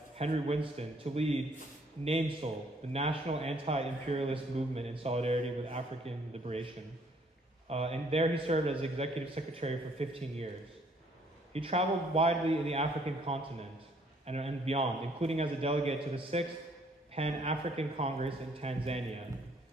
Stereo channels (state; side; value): normal; both; correlation 0.64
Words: Henry Winston to lead NAMSOL, the National Anti-Imperialist Movement in solidarity with African liberation. And there he served as executive secretary for 15 years. He traveled widely in the African continent and beyond, including as a delegate to the 6th Pan-African Congress in Tanzania,